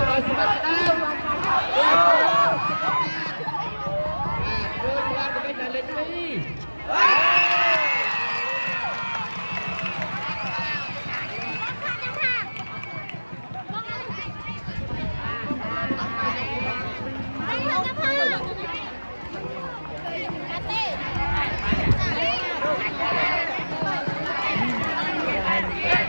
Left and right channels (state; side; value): inverted; both; correlation -1.00